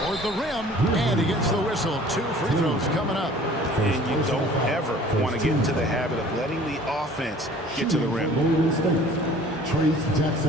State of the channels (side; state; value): both; normal; correlation 0.50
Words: toward the rim, and he gets the whistle. 2 free throws coming up. And you don't ever want to get into the habit of letting the offense get to the rim. Golden State, Trace